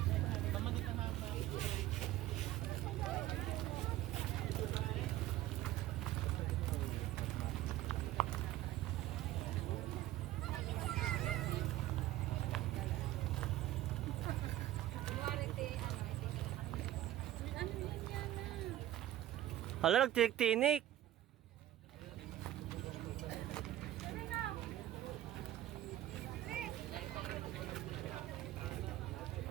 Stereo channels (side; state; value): left; quieter; 13.8 dB